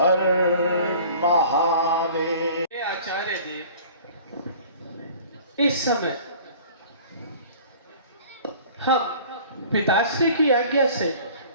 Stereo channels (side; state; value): both; inverted; correlation -0.46